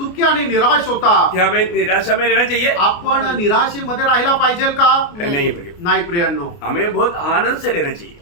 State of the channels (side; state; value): right; late; 29 ms